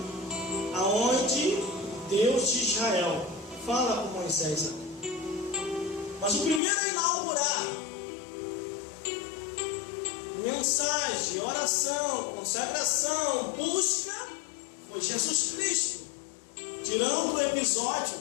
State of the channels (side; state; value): right; drops out; at 6.6 s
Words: aonde Deus de Israel fala com Moisés. Mas o primeiro a inaugurar mensagem, oração, consagração, busca, foi Jesus Cristo. Tirando o episódio